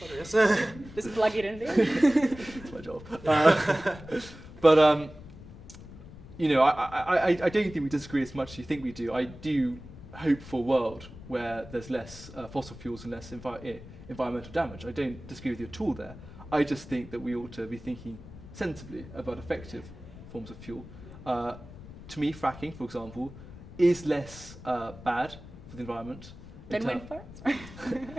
yes. Just plug it in there. That's my job. But I don't think we disagree as much as you think we do. I do hope for a world where there's less fossil fuels and less environmental damage. I don't disagree with you at all there. I just think that we ought to be thinking sensibly about effective forms of fuel. To me, fracking, for example, is less bad for the environment Than wind farms?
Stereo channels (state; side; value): noise; left; rumble, 16 dB below the sound